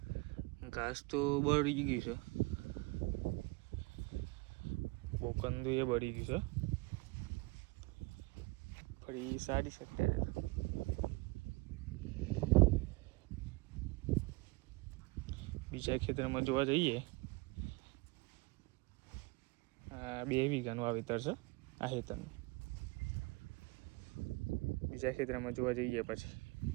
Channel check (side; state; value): left; quieter; 25.2 dB